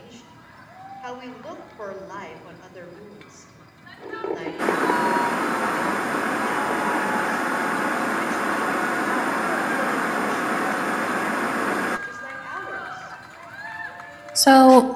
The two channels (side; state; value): both; identical; correlation 1.00